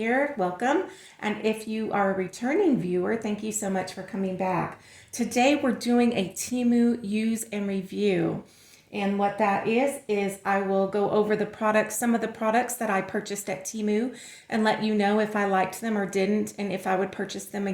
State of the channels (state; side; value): identical; both; correlation 1.00